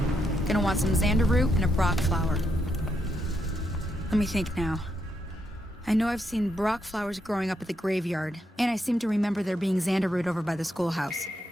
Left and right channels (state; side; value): normal; both; correlation 0.80